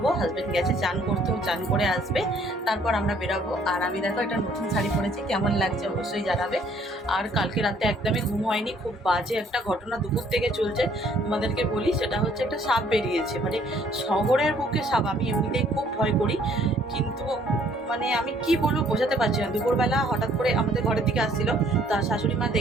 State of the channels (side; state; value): both; normal; correlation 0.61